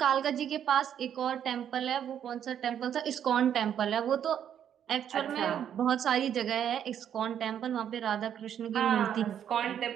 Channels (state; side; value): quieter; left; 9.3 dB